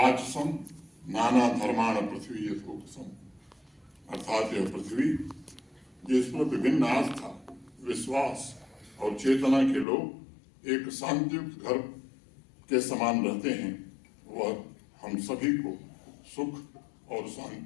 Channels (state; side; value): drops out; right; at 9.9 s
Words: नाना धर्माण पृथ्वी यथोक्तम, अर्थात यह पृथ्वी जिस पर विभिन्न आस्था, विश्वास और चेतना के लोग एक शांतियुक्त घर के समान रहते हैं, वह हम सभी को सुख और